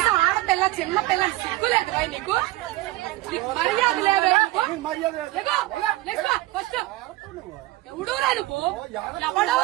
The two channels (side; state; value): left; quieter; 18.4 dB